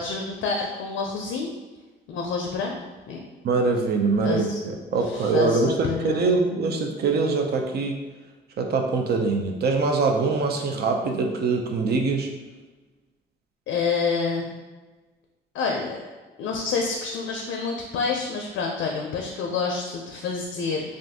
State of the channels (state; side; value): normal; both; correlation 0.31